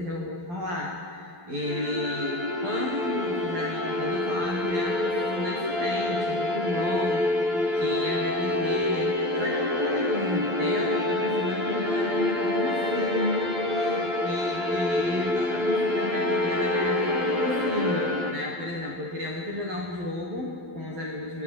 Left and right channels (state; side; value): late; left; 12 ms